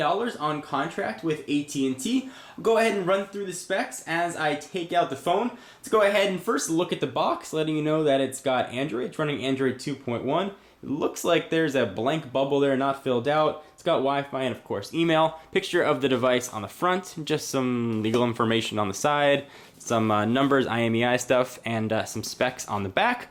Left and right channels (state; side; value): identical; both; correlation 1.00